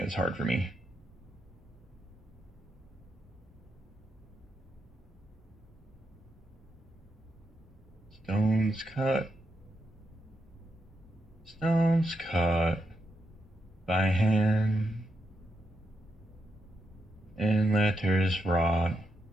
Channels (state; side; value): normal; both; correlation 0.83